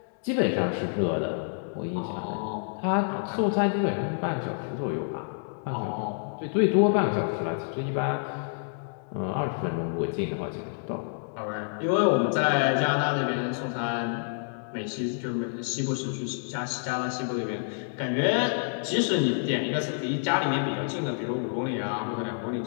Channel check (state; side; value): silent; right; digital silence